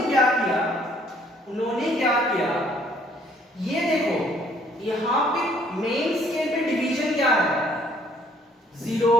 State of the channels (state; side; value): normal; both; correlation 0.62